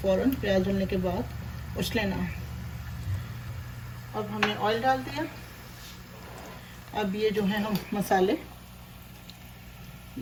फ़ौरन प्याज डालने के बाद उछले ना। अब हमने ऑयल डाल दिया। अब ये जो है हम मसाले,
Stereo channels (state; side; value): identical; both; correlation 1.00